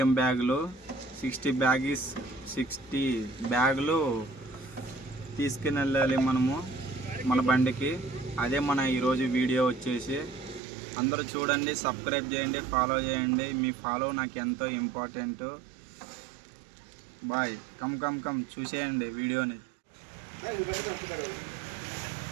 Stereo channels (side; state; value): left; drops out; at 10.6 s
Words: బ్యాగులు 60 బ్యాగులు తీసుకుని వెళ్ళాలి మనము మన బండికి. అదే మన ఈరోజు వీడియో వచ్చేసి. అందరూ చూడండి, సబ్స్క్రైబ్ చేయండి, ఫాలో చేయండి. మీ ఫాలో నాకు ఎంతో ఇంపార్టెంట్. బాయ్. కమ్ చూసేయండి వీడియోని.